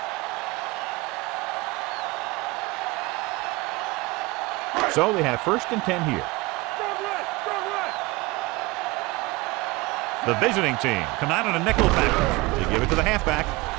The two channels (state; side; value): quieter; left; 22.6 dB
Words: So they have 1st and 10 here. The visiting team come out in a nickel package. They give it to the halfback.